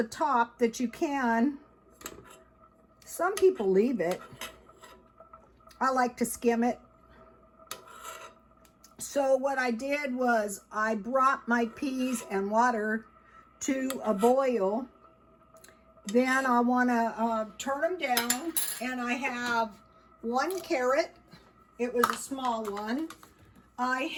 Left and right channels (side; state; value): both; identical; correlation 1.00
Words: top that you can. Some people leave it. I like to skim it. So what I did was I brought my peas and water to a boil. Then I want to turn them down, and I have 1 carrot. It was a small one. I